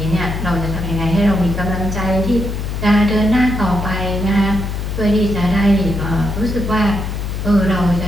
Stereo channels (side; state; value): left; noise; hum, 4 dB below the sound